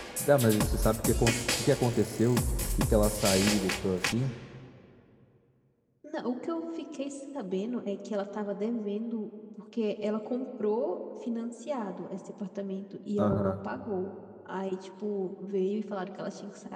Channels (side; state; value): both; identical; correlation 1.00